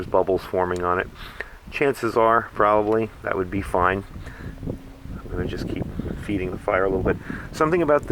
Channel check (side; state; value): both; identical; correlation 1.00